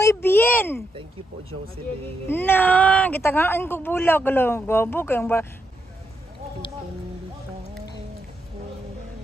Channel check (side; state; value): both; normal; correlation 0.81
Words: bien. Thank you po, Jocelyn. Na, gitagaan ko bulag lang. Gabo kayong ba.